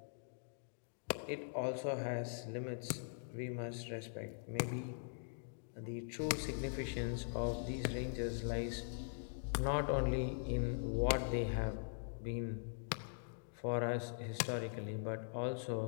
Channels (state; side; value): silent; right; digital silence